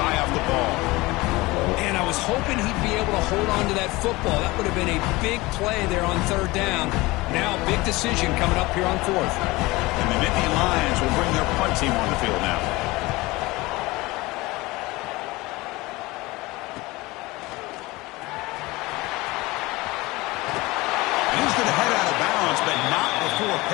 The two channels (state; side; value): quieter; right; 21.5 dB